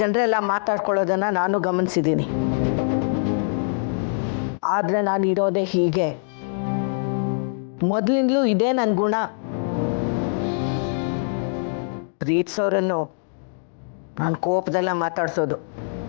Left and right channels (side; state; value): right; silent; digital silence